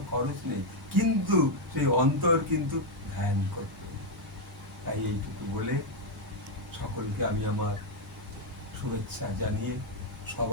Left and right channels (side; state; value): both; normal; correlation 0.01